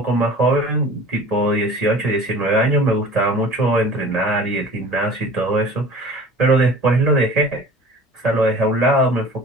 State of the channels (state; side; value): normal; both; correlation 0.43